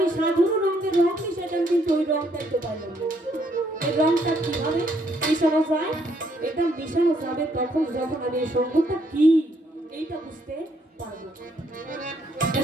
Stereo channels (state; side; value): normal; both; correlation 0.71